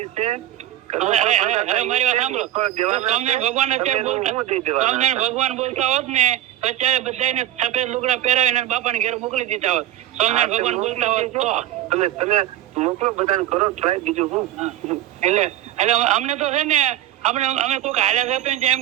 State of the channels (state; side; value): quieter; left; 12.7 dB